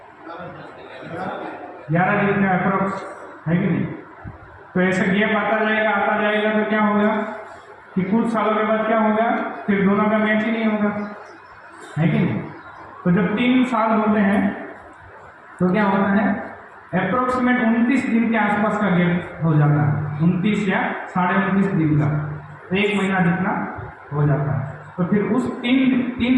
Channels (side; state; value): both; identical; correlation 1.00